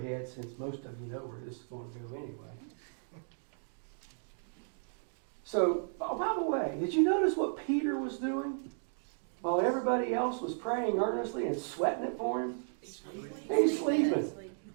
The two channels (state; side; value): silent; left; digital silence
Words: since most of you know where this is going to go anyway. So, by the way, did you notice what Peter was doing while everybody else was praying earnestly and sweating it for him? He's sleeping.